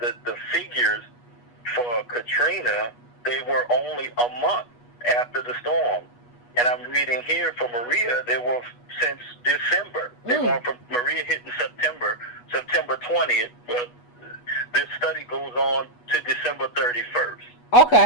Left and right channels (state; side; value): late; right; 8.2 ms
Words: figures for Katrina, they were only a month after the storm. And I'm reading here for Maria, they were since December. They're going from Maria hitting September 20th, but this study goes on to December 31st.